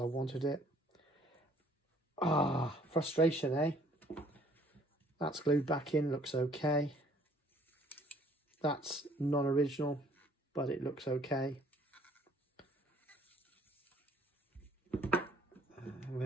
wanted it. Frustration, eh? That's glued back in, looks okay. That's non-original, but it looks okay.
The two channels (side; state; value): both; normal; correlation 0.59